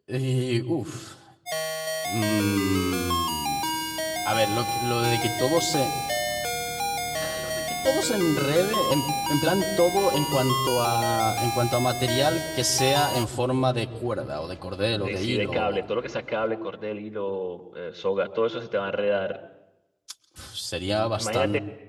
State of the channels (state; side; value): identical; both; correlation 1.00